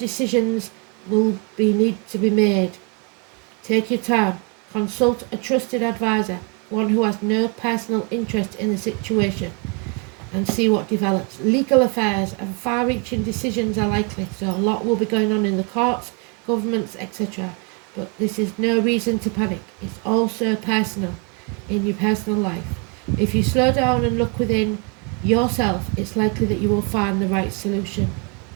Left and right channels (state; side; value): quieter; left; 34.4 dB